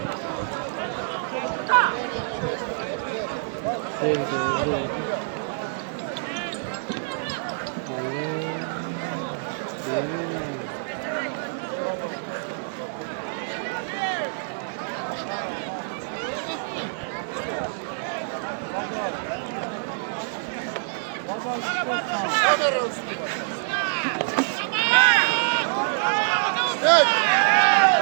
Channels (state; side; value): silent; left; digital silence